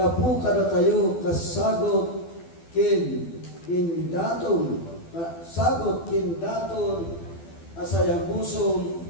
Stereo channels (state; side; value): late; right; 12 ms